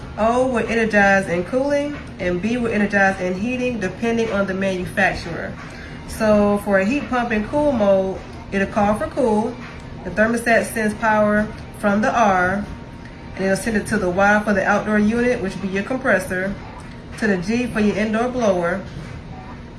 O will energize in cooling, and B will energize in heating depending on the manufacturer. So for a heat pump in cool mode, it'll call for cool. The thermostat sends power from the R, and it'll send it to the Y for the outdoor unit, which will be your compressor, to the G for your indoor blower,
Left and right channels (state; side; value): identical; both; correlation 1.00